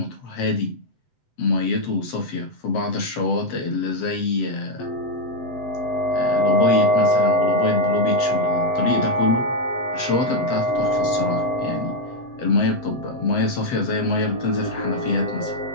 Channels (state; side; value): late; right; 7.9 ms